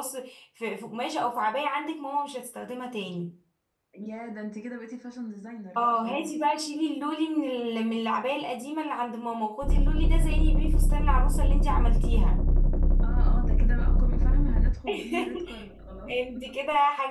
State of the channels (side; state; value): both; identical; correlation 1.00